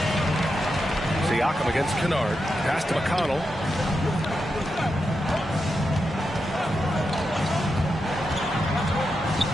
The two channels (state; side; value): normal; both; correlation 0.87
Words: Siakam against Kennard. Pass to McConnell.